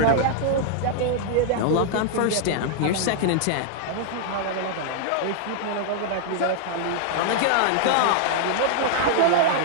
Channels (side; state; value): both; different; correlation -0.01